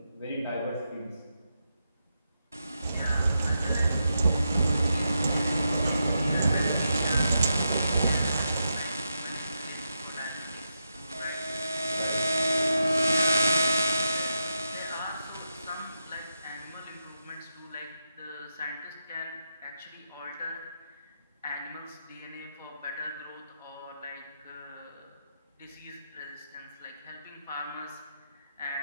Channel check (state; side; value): inverted; both; correlation -0.86